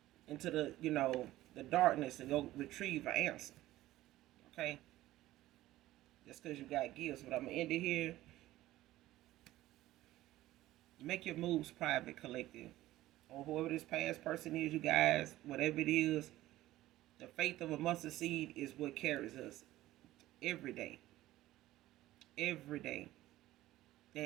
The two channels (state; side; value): quieter; left; 15.7 dB